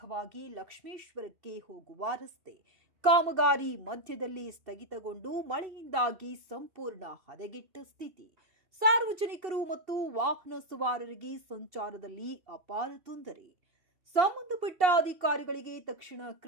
ಲಕ್ಷ್ಮೇಶ್ವರಕ್ಕೆ ಹೋಗುವ ರಸ್ತೆ ಕಾಮಗಾರಿ ಮಧ್ಯದಲ್ಲಿ ಸ್ಥಗಿತಗೊಂಡು ಮಳೆಯಿಂದಾಗಿ ಸಂಪೂರ್ಣ ಹದಗೆಟ್ಟ ಸ್ಥಿತಿ. ಸಾರ್ವಜನಿಕರು ಮತ್ತು ವಾಹನ ಸವಾರರಿಗೆ ಸಂಚಾರದಲ್ಲಿ ಅಪಾರ ತೊಂದರೆ. ಸಂಬಂಧಪಟ್ಟ ಅಧಿಕಾರಿಗಳಿಗೆ ತಕ್ಷಣ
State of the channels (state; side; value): late; left; 2.7 ms